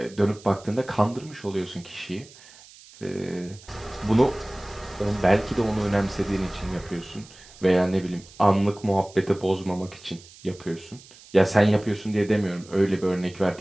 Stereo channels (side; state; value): right; noise; hiss, 22 dB below the sound